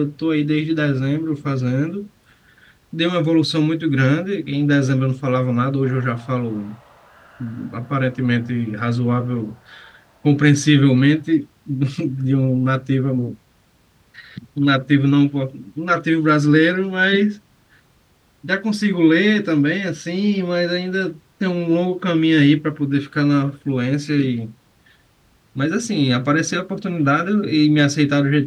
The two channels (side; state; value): both; identical; correlation 1.00